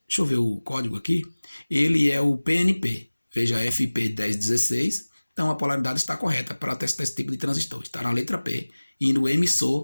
Deixa eu ver o código aqui. Ele é o PNP. Veja, FP1016. Então a polaridade está correta para testar esse tipo de transistor. Está na letra P. E no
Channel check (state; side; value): inverted; both; correlation -1.00